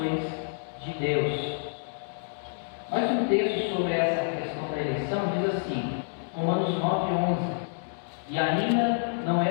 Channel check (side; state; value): right; silent; digital silence